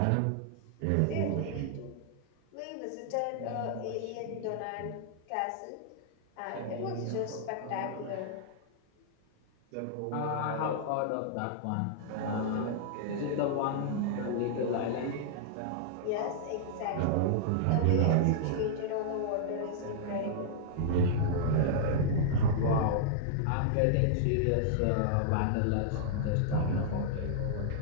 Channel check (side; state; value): both; different; correlation -0.01